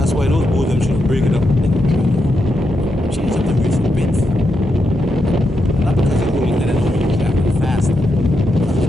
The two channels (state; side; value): normal; both; correlation 0.84